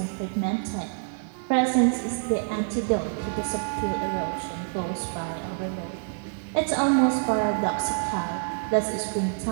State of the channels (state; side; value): silent; left; 55 dB below the other